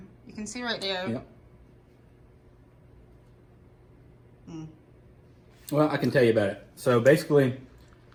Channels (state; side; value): identical; both; correlation 1.00